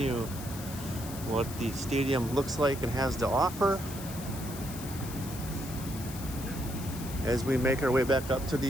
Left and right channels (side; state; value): left; noise; hiss, 12 dB below the sound